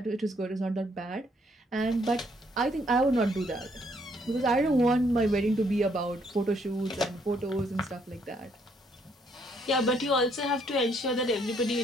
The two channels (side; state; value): both; normal; correlation 0.69